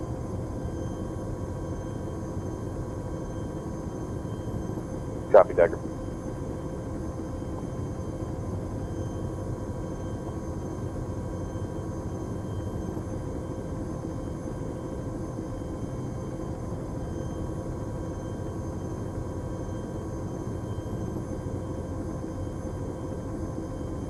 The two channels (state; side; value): identical; both; correlation 1.00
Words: that. Copy, Decker.